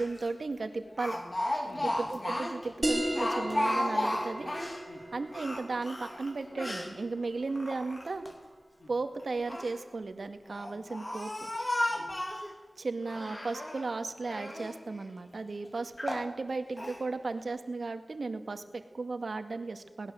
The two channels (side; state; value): both; normal; correlation 0.96